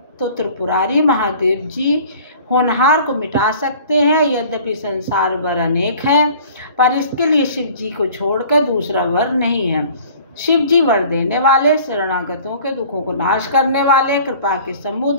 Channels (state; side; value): inverted; both; correlation -0.48